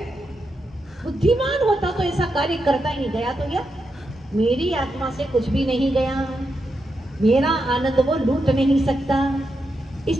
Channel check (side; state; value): both; normal; correlation 0.85